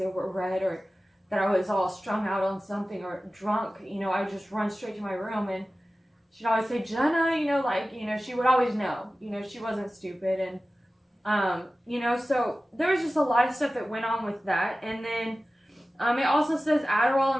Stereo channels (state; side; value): normal; both; correlation 0.96